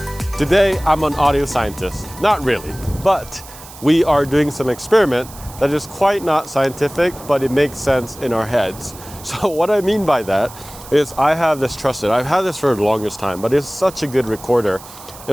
Today, I'm an audio scientist. Not really, but we are doing some experiment that is quite not scientific, but it makes sense in our heads. So what I mean by that is I have this trusted, I've had this for the longest time, but it's such a good recorder.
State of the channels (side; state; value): right; noise; hiss, 18 dB below the sound